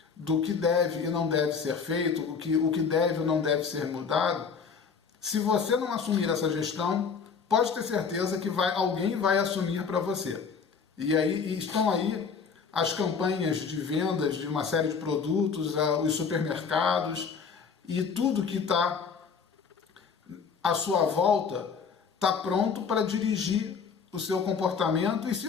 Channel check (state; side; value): quieter; right; 5.8 dB